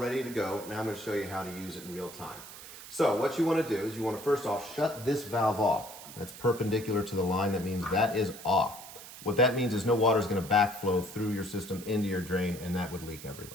to go. Now I'm going to show you how to use it in real time. So what you want to do is you want to first off shut this valve off. That's perpendicular to the line. That means that is off. What that means is no water is going to backflow through your system into your drain, and that would leak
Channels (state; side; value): noise; right; hiss, 14 dB below the sound